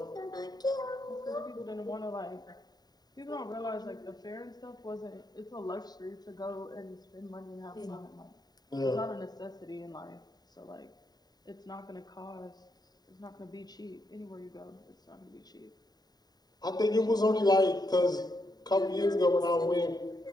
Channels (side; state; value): right; late; 0.19 ms